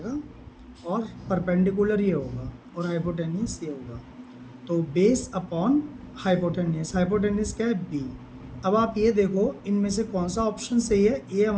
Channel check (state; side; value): identical; both; correlation 1.00